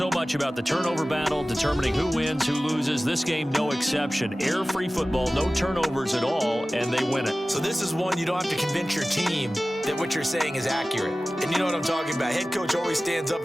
much about the turnover battle, determining who wins, who loses. This game, no exception. Air-free football, no turnovers at all, and they win it. So this is one you don't have to convince your team that what you're saying is accurate. And you know what I'm talking about. Head coach always stands up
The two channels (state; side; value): normal; both; correlation 0.97